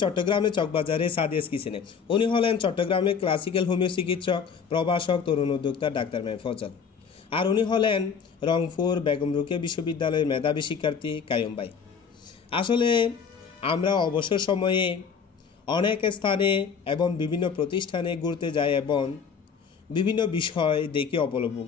চট্টগ্রামে চকবাজারে সাদিয়াস কিচেনে। উনি হলেন চট্টগ্রামে ক্লাসিক্যাল হোমিও চিকিৎসক, প্রভাষক, তরুণ উদ্যোক্তা ডাক্তার মেহের ফজল। আর উনি হলেন রংপুর বেগম রোকেয়া বিশ্ববিদ্যালয়ের মেধাবী শিক্ষার্থী কায়ুম ভাই। আসলে আমরা অবসর সময়ে অনেক স্থানে এবং বিভিন্ন প্রতিষ্ঠানে ঘুরতে যাই এবং বিভিন্ন বিষয় দেখে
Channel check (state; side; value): quieter; right; 6.4 dB